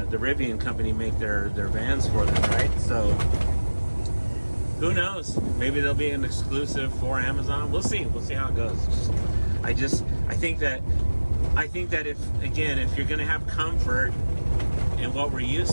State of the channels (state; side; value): inverted; both; correlation -1.00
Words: the Rivian company make their vans for them, right? So who knows? Maybe there'll be an exclusive for Amazon. We'll see. We'll see how it goes. I think that if you're going to have comfort and what we're